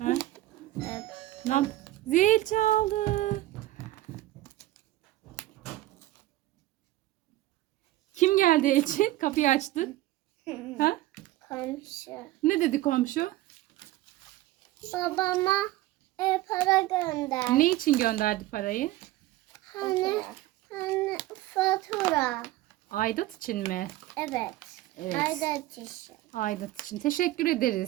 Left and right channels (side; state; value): left; quieter; 16.3 dB